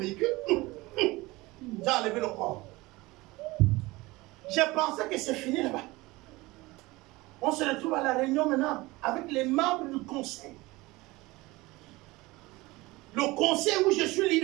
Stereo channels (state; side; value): quieter; left; 21.3 dB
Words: J'ai enlevé le corps. J'ai pensé que c'est fini là-bas. On se retrouve à la réunion maintenant avec les membres du conseil. Le conseil où je suis